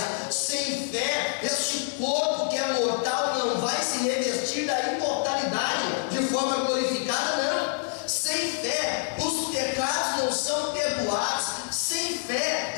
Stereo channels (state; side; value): silent; right; digital silence